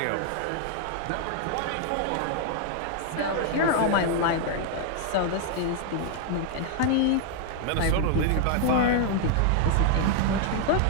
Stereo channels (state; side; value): different; both; correlation 0.00